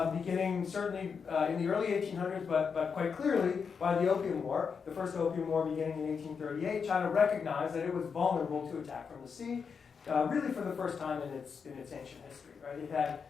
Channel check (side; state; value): right; quieter; 6.0 dB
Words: beginning certainly in the early 1800s, but quite clearly by the Opium War, the first Opium War beginning in 1838, China recognized that it was vulnerable to attack from the sea, really for the first time in its ancient history. Right?